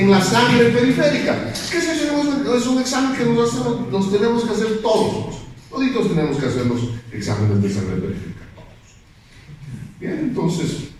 la sangre periférica. ¿Qué es eso? Es un examen que nos tenemos que hacer todos. Toditos tenemos que hacer los exámenes de sangre periférica. Bien, entonces,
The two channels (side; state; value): both; identical; correlation 1.00